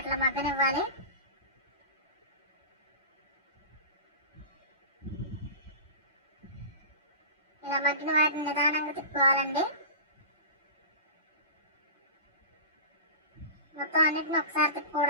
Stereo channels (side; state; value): both; inverted; correlation -0.31